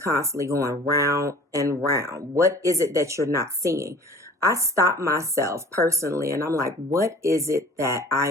going round and round? What is it that you're not seeing? I stop myself personally and I'm like, what is it that I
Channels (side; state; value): both; normal; correlation 0.45